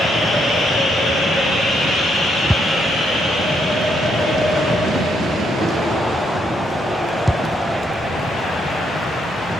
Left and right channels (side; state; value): both; normal; correlation 0.75